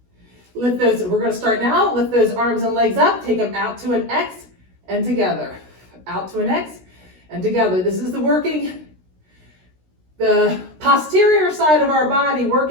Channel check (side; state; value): left; late; 16 ms